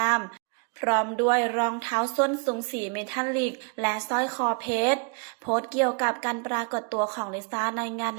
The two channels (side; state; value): left; quieter; 34.8 dB